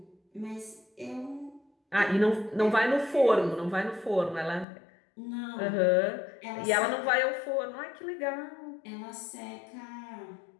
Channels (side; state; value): right; drops out; at 4.7 s